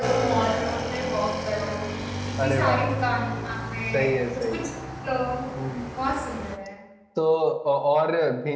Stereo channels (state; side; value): identical; both; correlation 1.00